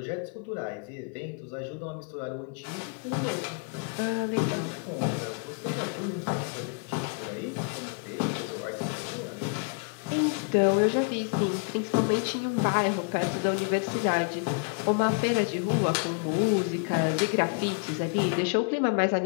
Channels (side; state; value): right; quieter; 34.5 dB